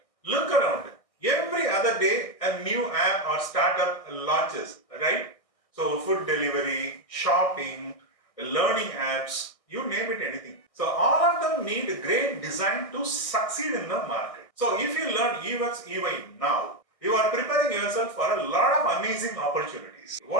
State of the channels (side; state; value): right; late; 1.6 ms